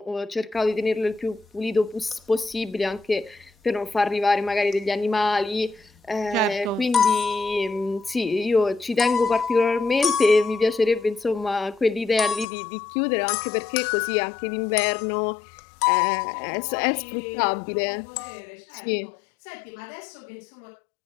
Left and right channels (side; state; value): right; drops out; at 12.5 s